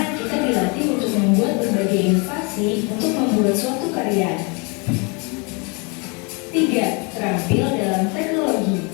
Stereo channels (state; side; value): quieter; right; 31.8 dB